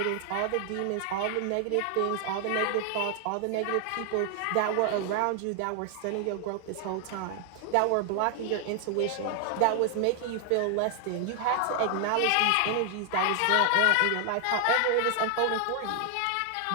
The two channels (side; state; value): both; different; correlation 0.00